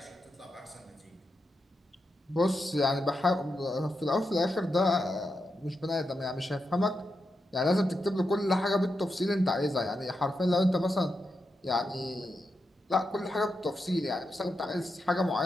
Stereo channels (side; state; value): both; normal; correlation 0.87